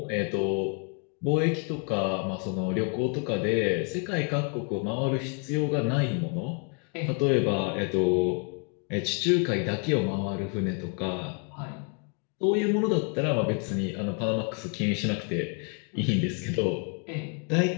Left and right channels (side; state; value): right; quieter; 35.7 dB